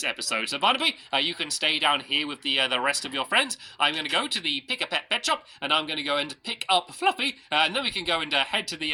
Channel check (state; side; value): identical; both; correlation 1.00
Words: episode. So Barnaby, you can stay down here with the rest of your friends. I'm going to go to the Pick a Pet pet shop, and I'm going to go and pick up Fluffy, and then we can go and head to